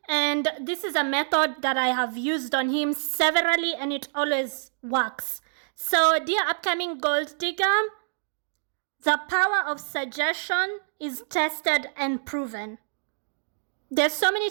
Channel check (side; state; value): left; silent; digital silence